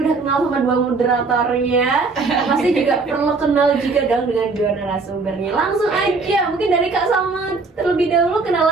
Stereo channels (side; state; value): left; quieter; 4.1 dB